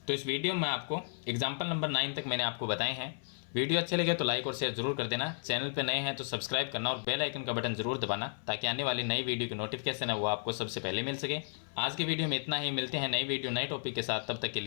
तो इस वीडियो में आपको एग्जाम्पल नंबर 9 तक मैंने आपको बताए हैं। वीडियो अच्छे लगे तो लाइक और शेयर जरूर कर देना। चैनल पे नए हैं तो सब्सक्राइब करना और बेल आइकन का बटन जरूर दबाना, ताकि आने वाली नई वीडियो की नोटिफिकेशन है वो आपको सबसे पहले मिल सके। आज की वीडियो में इतना ही, मिलते हैं नई वीडियो नए टॉपिक के साथ, तब तक के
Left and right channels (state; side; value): silent; right; 55 dB below the other